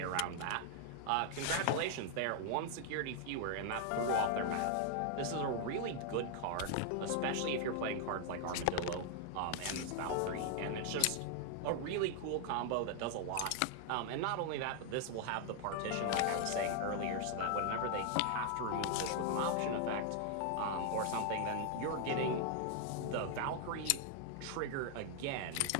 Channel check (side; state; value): both; different; correlation 0.00